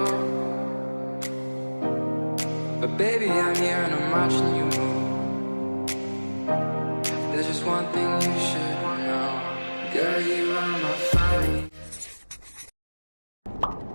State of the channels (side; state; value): both; inverted; correlation -1.00